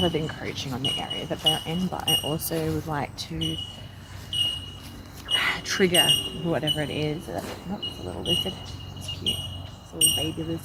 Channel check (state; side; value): identical; both; correlation 1.00